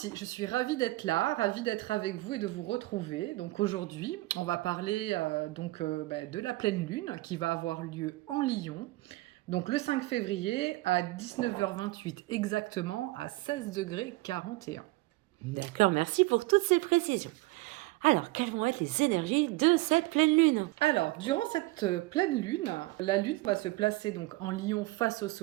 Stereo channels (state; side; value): quieter; left; 20.6 dB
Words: je suis ravie d'être là, ravie d'être avec vous et de vous retrouver. Donc aujourd'hui, on va parler de la pleine lune qui va avoir lieu en Lion. Donc le 5 février à 19h28 exactement à 16 degrés 41. D'accord, merci pour toutes ces précisions. Alors, quelles vont être les énergies de cette pleine lune? Alors, durant cette pleine lune, la lune va se placer donc en Lion face au